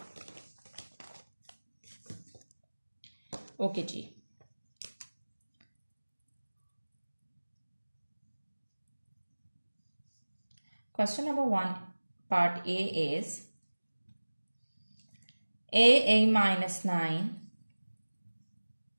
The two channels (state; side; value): inverted; both; correlation -1.00